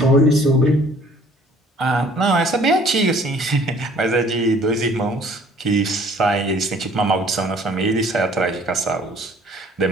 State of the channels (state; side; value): normal; both; correlation 0.56